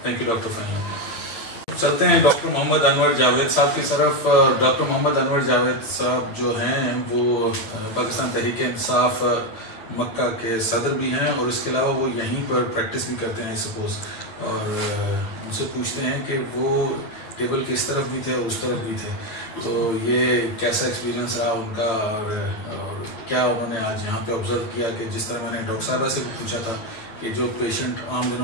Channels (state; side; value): late; right; 9.0 ms